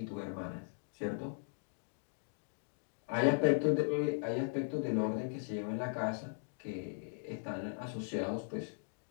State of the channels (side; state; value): right; silent; digital silence